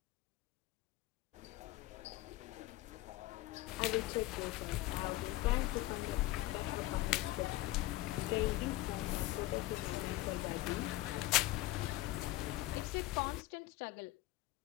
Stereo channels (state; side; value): quieter; right; 17.9 dB